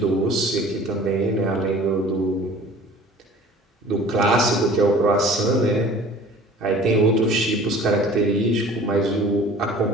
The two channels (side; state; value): both; normal; correlation 0.47